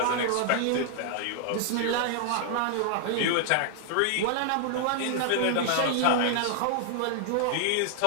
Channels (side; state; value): both; different; correlation -0.01